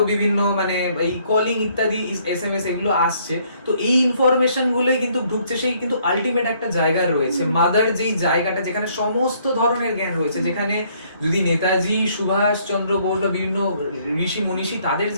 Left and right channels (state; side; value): inverted; both; correlation -0.66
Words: বিভিন্ন মানে এই কলিং ইত্যাদি SMS এগুলো আসছে। তো এই ইনফরমেশন গুলোই কিন্তু ঢুকছে, সেই কিন্তু আলটিমেট একটা জায়গা রয়েছে, মাদার যেই জায়গাটা, যেখানে সমস্ত ধরনের জ্ঞান রয়েছে, যেখানে যদি নেতাজি, সুভাষ চন্দ্র বোস বা বিভিন্ন ঋষি মনীষী, তাদের